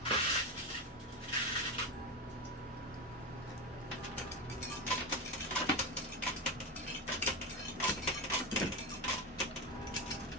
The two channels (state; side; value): normal; both; correlation 0.17